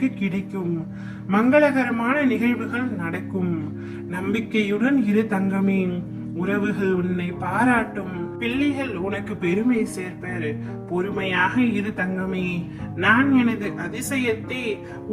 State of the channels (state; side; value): identical; both; correlation 1.00